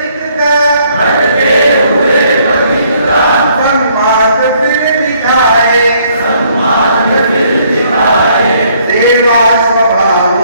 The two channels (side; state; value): both; inverted; correlation -0.66